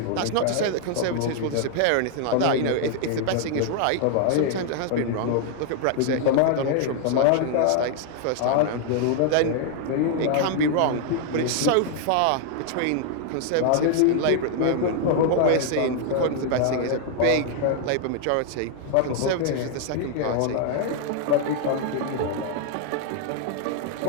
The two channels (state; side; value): different; both; correlation 0.00